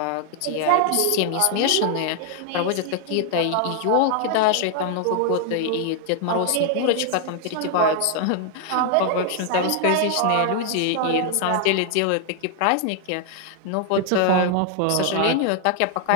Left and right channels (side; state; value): both; different; correlation 0.00